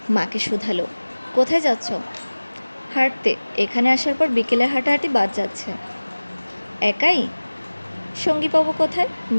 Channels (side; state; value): both; inverted; correlation -1.00